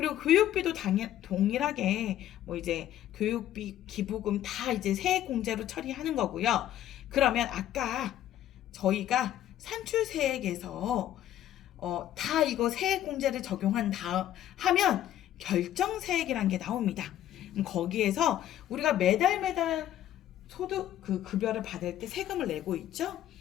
교육비도 동일하게 이제 교육비, 기부금 다 이제 세액 공제로 처리하는 거고요. 그러면 아까 저희가 산출세액에서 다 이거 세액 공제를 하면 결정세액이라는 게 나옵니다. 거기에서 우리가 매달 소득 급여를 받을 때 세금을 내고 있죠?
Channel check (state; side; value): quieter; right; 12.1 dB